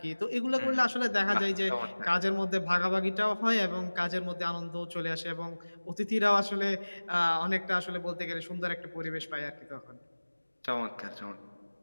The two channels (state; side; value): inverted; both; correlation -1.00